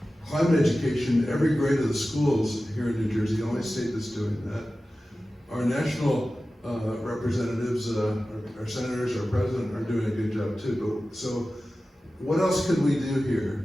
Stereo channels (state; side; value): normal; both; correlation 0.95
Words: climate education in every grade of the schools here in New Jersey, the only state that's doing that. Our national representatives, our senators, our president are doing a good job too. So what else could we do